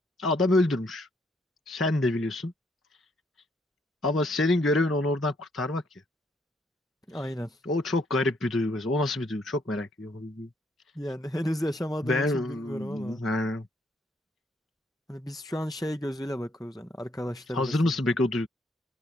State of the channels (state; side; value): normal; both; correlation 0.71